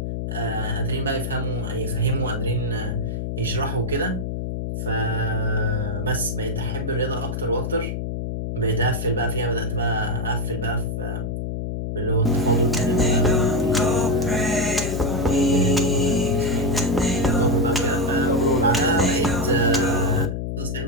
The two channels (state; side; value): noise; left; hum, 3 dB below the sound